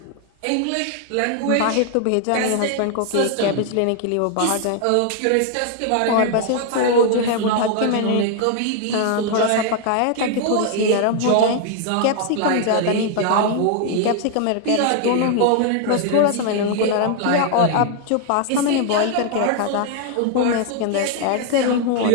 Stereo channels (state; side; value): different; both; correlation 0.00